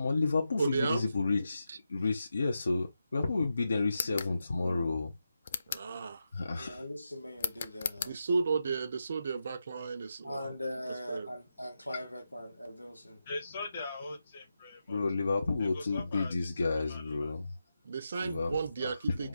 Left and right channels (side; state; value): both; inverted; correlation -0.88